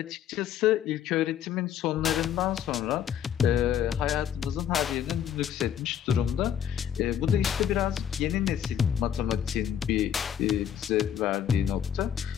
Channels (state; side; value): quieter; right; 9.4 dB